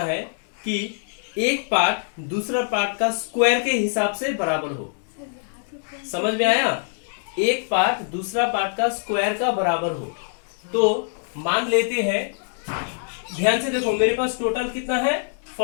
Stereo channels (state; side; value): silent; right; digital silence